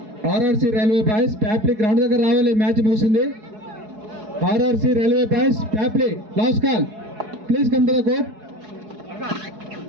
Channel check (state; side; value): late; left; 4.7 ms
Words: ఆర్ఆర్సీ రైల్వే బాయ్స్ ప్యాప్లీ గ్రౌండ్ దగ్గర రావాలి. మ్యాచ్ ముగిసింది. ఆర్ఆర్సీ రైల్వే బాయ్స్ ప్యాప్లీ last call, please come to the court.